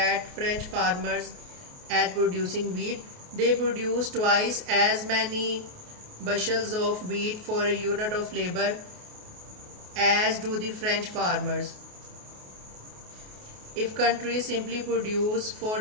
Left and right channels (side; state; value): left; late; 28 ms